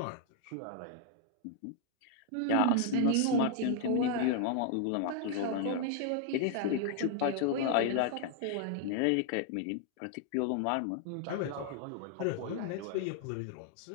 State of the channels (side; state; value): both; different; correlation 0.00